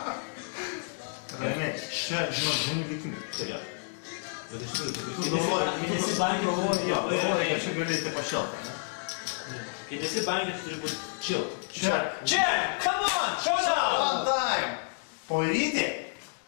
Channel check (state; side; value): silent; right; digital silence